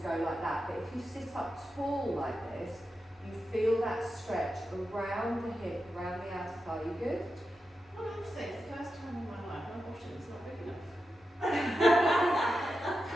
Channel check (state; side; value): normal; both; correlation 0.89